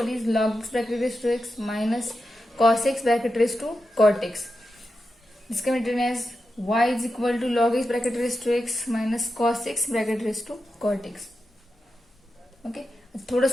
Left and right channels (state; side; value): normal; both; correlation 0.89